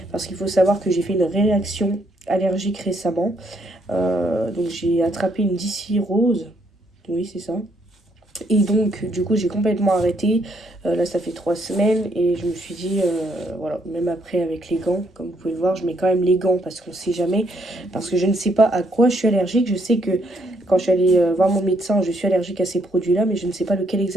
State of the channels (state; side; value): normal; both; correlation 0.72